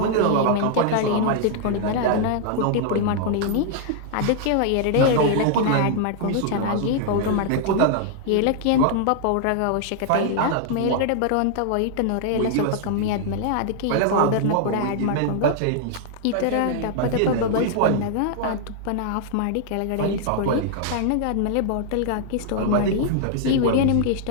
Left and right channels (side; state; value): both; different; correlation -0.01